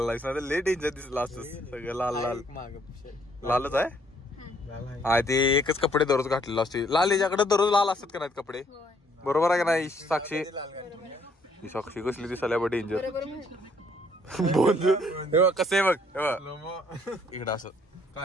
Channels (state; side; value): normal; both; correlation 0.66